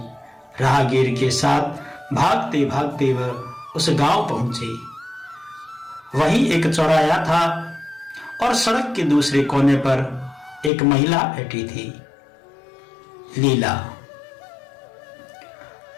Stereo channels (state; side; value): drops out; right; at 10.7 s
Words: राहगीर के साथ भागते भागते वह उस गांव पहुंचे। वहीं एक चौराहा था और सड़क के दूसरे कोने पर एक महिला बैठी थी, लीला।